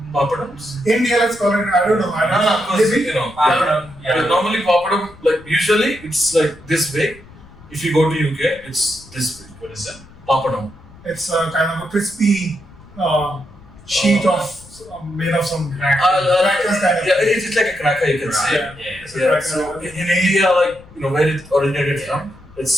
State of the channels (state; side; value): noise; left; rumble, 22 dB below the sound